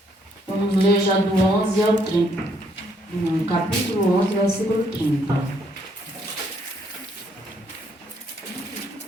Vamos ler já do 11 ao 30. No capítulo 11, versículo 30.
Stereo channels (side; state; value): both; normal; correlation 0.69